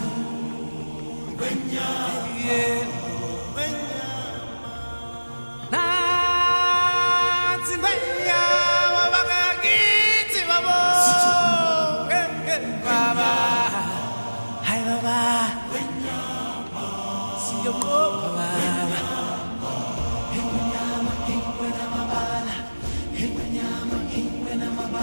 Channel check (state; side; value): inverted; both; correlation -1.00